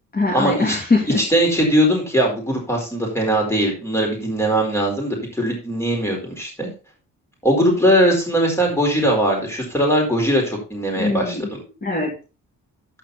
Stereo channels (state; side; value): normal; both; correlation 0.36